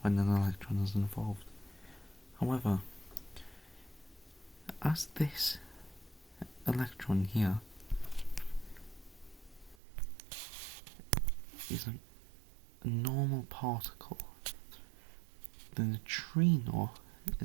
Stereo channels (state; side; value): drops out; left; at 9.8 s